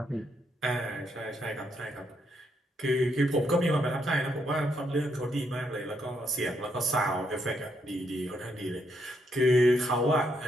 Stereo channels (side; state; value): both; normal; correlation 0.76